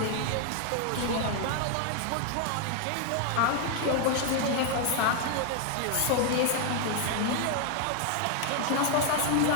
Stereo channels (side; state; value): both; different; correlation 0.00